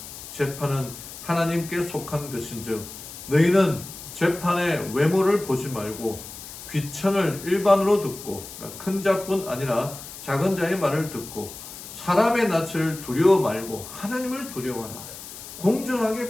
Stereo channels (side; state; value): left; noise; hiss, 13 dB below the sound